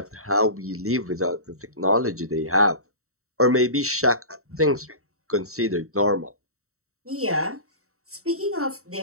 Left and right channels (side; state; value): left; late; 0.64 ms